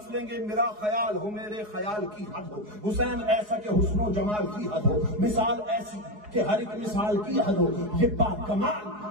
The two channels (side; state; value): left; late; 4.8 ms